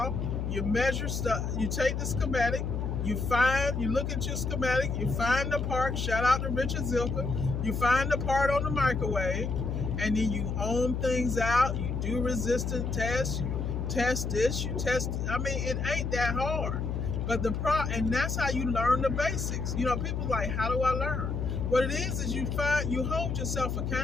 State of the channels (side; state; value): left; noise; hum, 2 dB below the sound